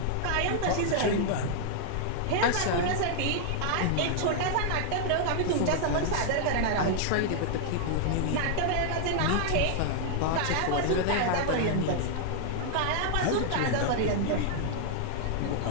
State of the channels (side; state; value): both; different; correlation -0.01